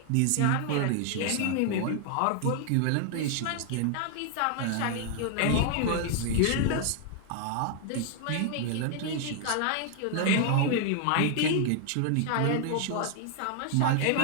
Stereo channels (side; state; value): both; different; correlation 0.00